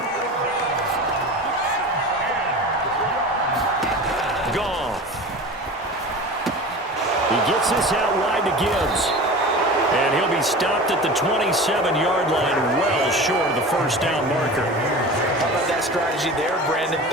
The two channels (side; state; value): both; normal; correlation 0.34